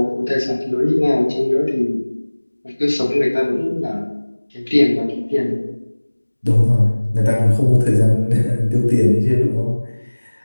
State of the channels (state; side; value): inverted; both; correlation -1.00